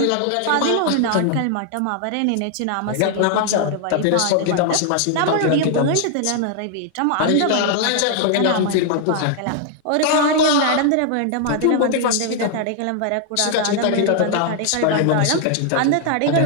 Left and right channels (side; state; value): both; different; correlation 0.00